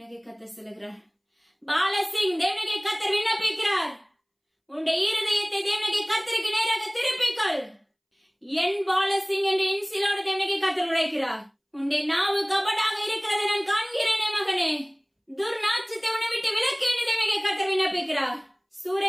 கர்த்தர் சொல்லுகிறார், பாலசிங் தேவனாகிய கர்த்தர் விண்ணப்பிக்கிறார், உன்னுடைய இருதயத்தை தேவனாகிய கர்த்தருக்கு நேராக திருப்பிக்கொள். என் பாலசிங் என்று இன்சிலோடு தேவனாகிய கர்த்தர் உரைக்கிறார். உன்னுடைய நாவு கபடாக இருக்கிறதை நான் காண்கிறேனே மகனே, துர்நாற்றத்தை உன்னை விட்டு விலக்கு என்று தேவனாகிய கர்த்தர் விண்ணப்பிக்கிறார்.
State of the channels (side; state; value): both; identical; correlation 1.00